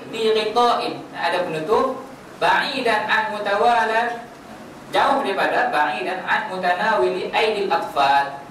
bi ghita'in, ada penutup, ba'idan an mutawalad, jauh daripada ba'idan an mutanawili aidil atfal,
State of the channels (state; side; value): identical; both; correlation 1.00